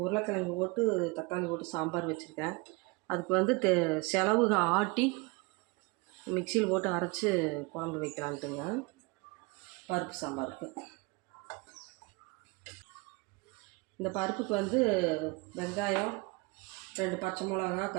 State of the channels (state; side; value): quieter; left; 27.0 dB